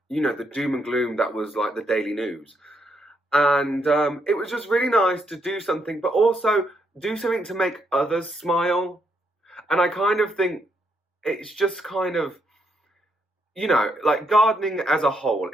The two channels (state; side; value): normal; both; correlation 0.76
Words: the doom and gloom that was like the daily news. And it was just really nice to do something, but also do something to make others smile. And I kind of think it's just kind of, like gardening as a whole